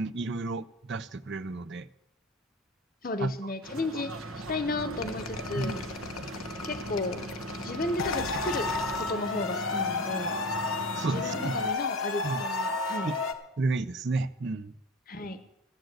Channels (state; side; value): normal; both; correlation 0.32